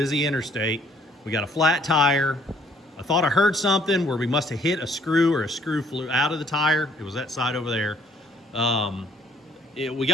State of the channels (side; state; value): both; normal; correlation 0.63